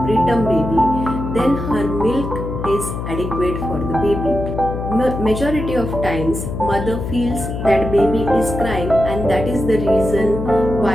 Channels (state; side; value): noise; left; hum, 5 dB below the sound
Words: preterm baby, then her milk is adequate for the baby. Majority of times mother feels that baby is crying, and that is the reason